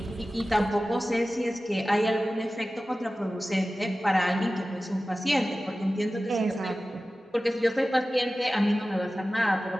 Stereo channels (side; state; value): both; normal; correlation 0.96